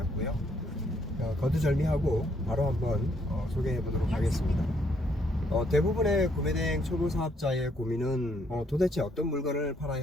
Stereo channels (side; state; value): both; normal; correlation 0.70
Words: 거두절미하고 바로 한번 소개해 보도록 하겠습니다. 대부분의 구매대행 초보 사업자의 고민은 도대체 어떤 물건을